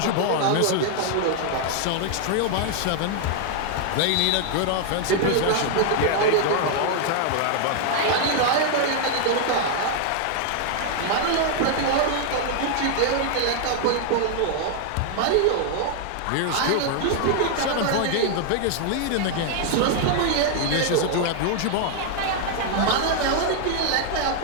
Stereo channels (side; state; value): both; different; correlation 0.00